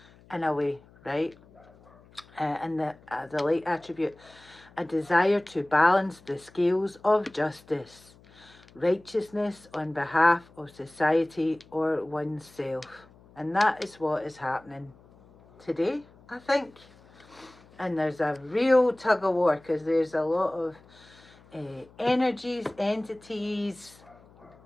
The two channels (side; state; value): left; noise; hum, 26 dB below the sound